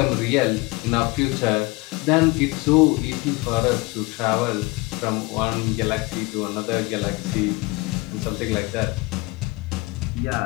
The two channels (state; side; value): quieter; right; 24.1 dB